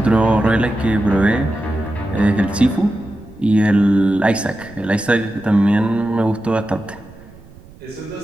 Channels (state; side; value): noise; right; rumble, 22 dB below the sound